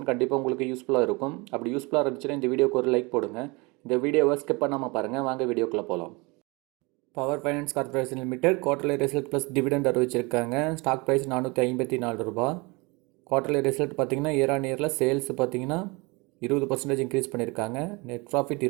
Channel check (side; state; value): left; quieter; 26.6 dB